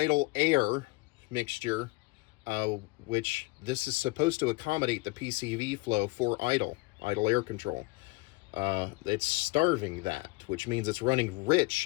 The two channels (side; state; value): right; quieter; 24.4 dB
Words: air mixture, which this is supposed to accommodate the PCV flow for idle air control. It's starving that, which means it's running